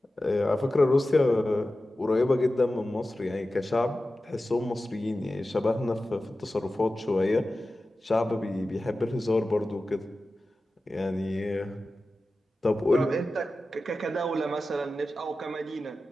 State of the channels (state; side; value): normal; both; correlation 0.94